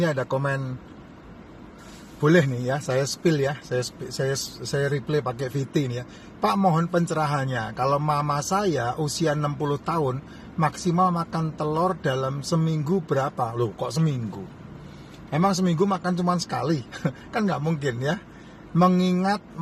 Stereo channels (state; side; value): identical; both; correlation 1.00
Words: ada komen, boleh nih ya, saya spill ya, saya replay pakai VT nih ya. Pak, mohon pencerahannya. Kalau mama saya usia 60 tahun, maksimal makan telur dalam seminggu berapa? Loh, kok seminggu? Emang seminggu makan cuma sekali? Kan nggak mungkin ya. Mengingat